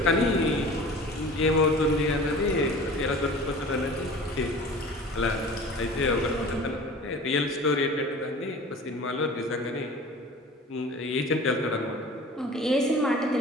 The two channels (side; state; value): both; normal; correlation 0.41